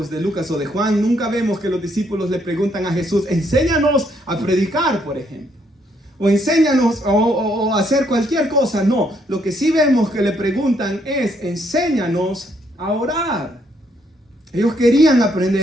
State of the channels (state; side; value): normal; both; correlation 0.72